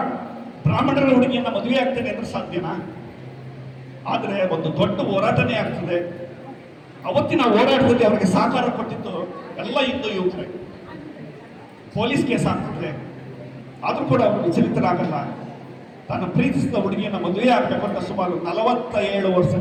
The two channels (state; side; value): identical; both; correlation 1.00